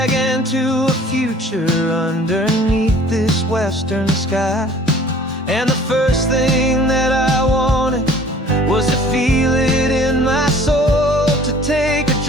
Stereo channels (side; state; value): both; normal; correlation 0.51